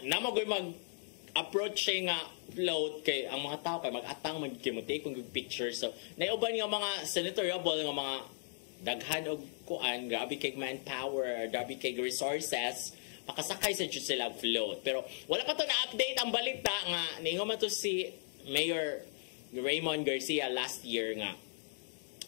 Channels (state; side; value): silent; right; digital silence